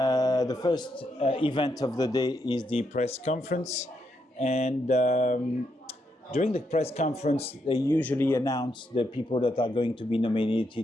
first event of the day, is the press conference, and during the press conference, they usually announce the people that are going to be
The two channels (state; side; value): normal; both; correlation 0.79